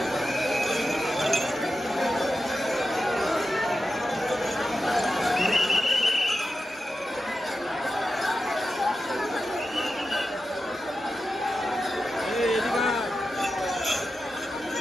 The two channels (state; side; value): normal; both; correlation 0.91